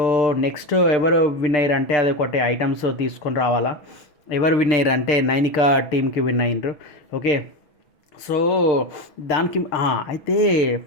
నెక్స్ట్ ఎవరు విన్ అయ్యారు అంటే అది ఒకటి ఐటమ్స్ తీసుకొని రావాలా. ఎవరు విన్ అయ్యారు అంటే నైనికా టీంకి విన్ అయ్యారు. ఓకే, సో దానికి అయితే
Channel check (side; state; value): right; late; 6.4 ms